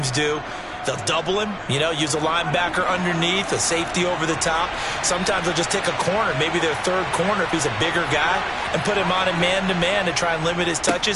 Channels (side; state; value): both; identical; correlation 1.00